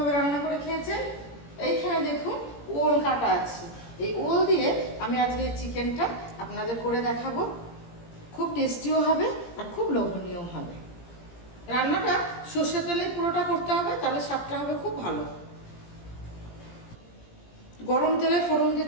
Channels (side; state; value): right; late; 17 ms